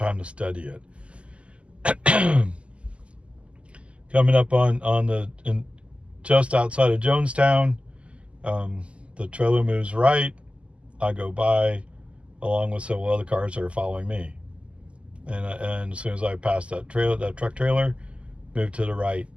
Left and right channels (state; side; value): late; left; 0.056 ms